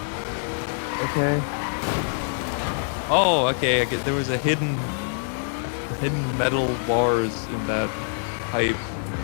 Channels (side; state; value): right; silent; 62 dB below the other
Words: Okay. Oh, okay. There was a hidden metal bars in that pipe.